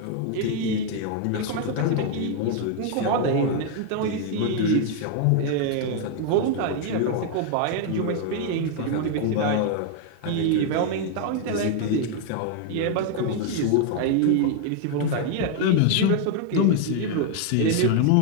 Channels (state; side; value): different; both; correlation 0.00